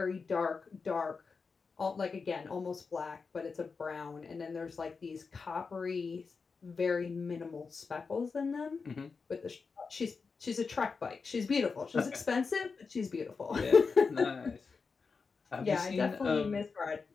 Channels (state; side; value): quieter; right; 4.9 dB